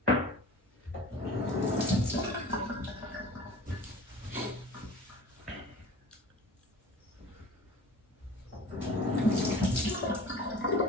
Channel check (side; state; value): both; normal; correlation 0.41